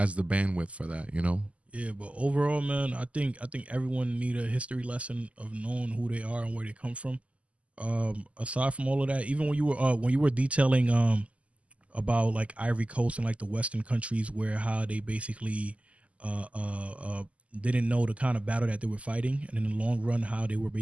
the bandwidth for that, Yeah, but overall, man, I think everyone need a history lesson of knowing who they are and where they come from. Aside from all of that, even when you were detailing about like Ivory Coast and like the Western countries where how they basically didn't know the kind of battle that they were fighting, and in the long run how they were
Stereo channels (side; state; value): left; late; 0.064 ms